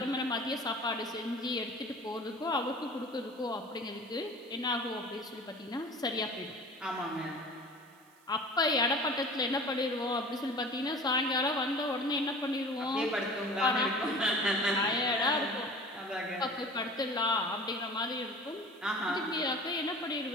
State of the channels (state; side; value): noise; right; hiss, 30 dB below the sound